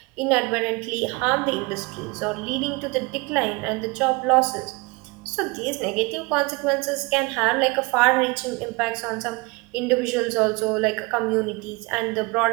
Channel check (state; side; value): quieter; left; 26.1 dB